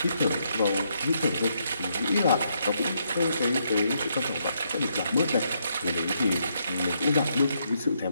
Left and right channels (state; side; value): inverted; both; correlation -0.76